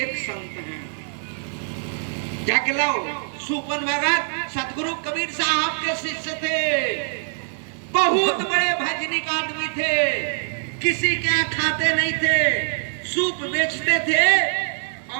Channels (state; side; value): silent; left; digital silence